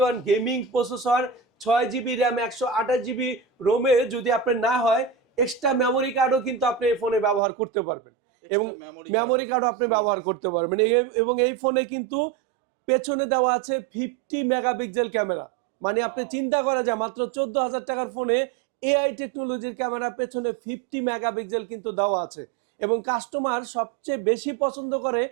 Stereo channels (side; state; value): left; drops out; at 7.4 s